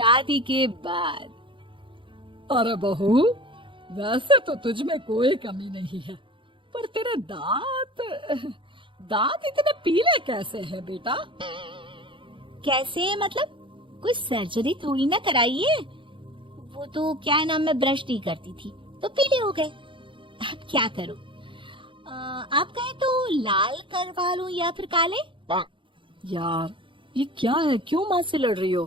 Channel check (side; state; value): left; late; 0.24 ms